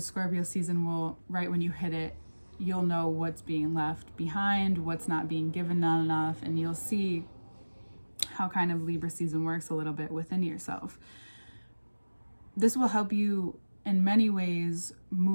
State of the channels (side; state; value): both; inverted; correlation -1.00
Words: Scorpio season will, right when you hit it, you'll know what's being left behind, what's not being given enough, and you'll see how kind of Libra season works a little bit within yourself. This will help you in many ways